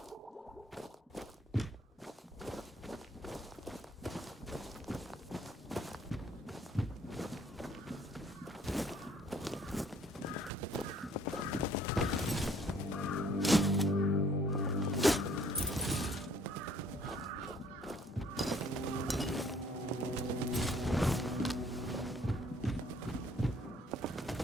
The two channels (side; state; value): both; normal; correlation 0.61